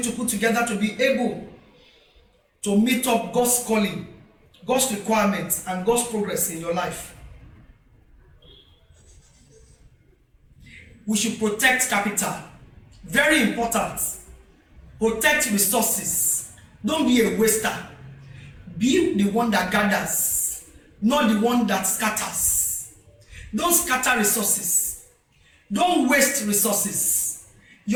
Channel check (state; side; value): identical; both; correlation 1.00